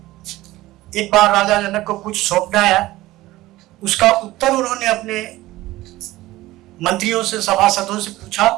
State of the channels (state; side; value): quieter; left; 17.4 dB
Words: एक बार राजा जनक को कुछ सौंपना आया, उसका उत्तर उन्होंने अपने मंत्रियों से, सभासदों से पूछा